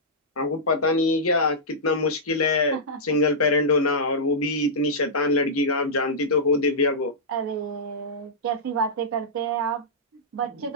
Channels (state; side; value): normal; both; correlation -0.12